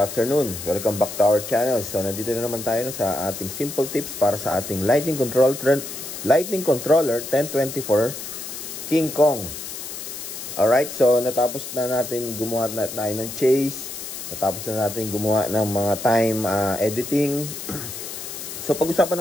Welcome back to our channel. So nandito na naman tayo sa ating simple tips para sa ating Lightning Controller 1024 King Kong. Alright, so natapos na natin gumawa tayo ng chase. Natapos na natin gumawa ng mga time editing. So pag-usapan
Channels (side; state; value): left; noise; hiss, 9 dB below the sound